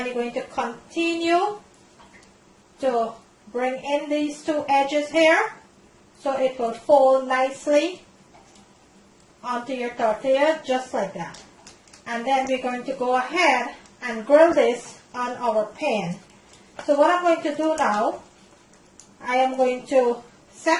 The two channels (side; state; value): both; identical; correlation 1.00